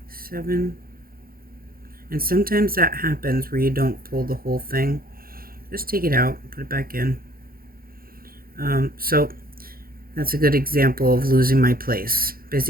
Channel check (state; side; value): late; left; 0.42 ms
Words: 7, and sometimes that happens where you don't pull the whole thing. Just take it out, put it back in. So that's a good example of losing my place.